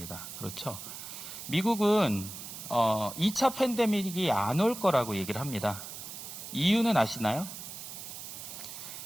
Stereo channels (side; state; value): right; noise; hiss, 10 dB below the sound